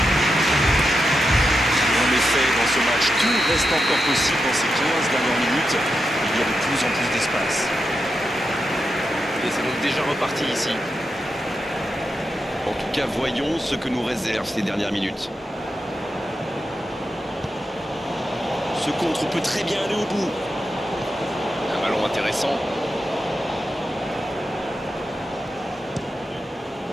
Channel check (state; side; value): normal; both; correlation 0.87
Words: En effet, dans ce match, tout reste encore possible dans ces 15 dernières minutes. Il y a de plus en plus d'espace. Et c'est donc déjà reparti ici. En tout cas, voyons ce que nous réservent ces dernières minutes. Ce contre peut très bien aller au bout. Un ballon intéressant.